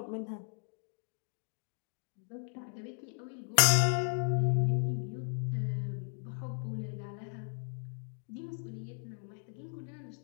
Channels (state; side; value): silent; right; 54 dB below the other